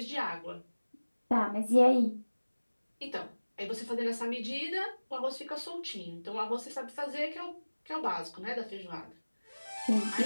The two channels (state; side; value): inverted; both; correlation -1.00